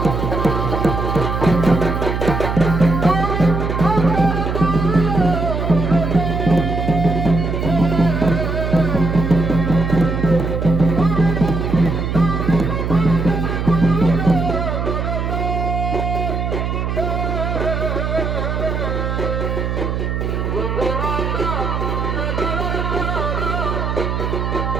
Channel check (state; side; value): noise; right; hum, 1 dB below the sound